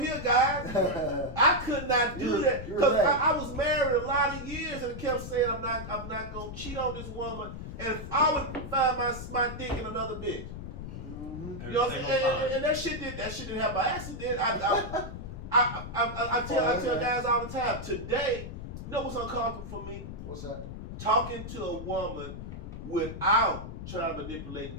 guys. I could not do that You're because right. I was married a lot of years and kept saying I'm not gonna cheat on this woman, and if I would find my dick in another bitch. Mhm. Every You know what I'm single saying? time. And that shit didn't happen by accident. I tell guys all the time. Today, you know what's uncomfortable for me? What's that? Talking to a woman without trying to manipulate and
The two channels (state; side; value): noise; left; rumble, 9 dB below the sound